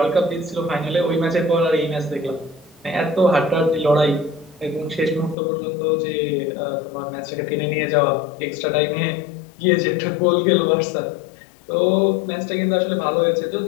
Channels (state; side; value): drops out; right; at 5.4 s